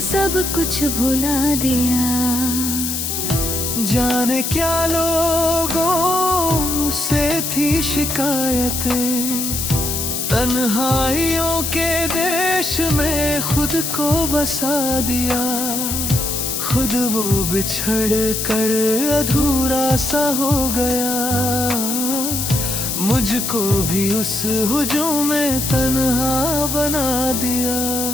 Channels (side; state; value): left; noise; hiss, 2 dB below the sound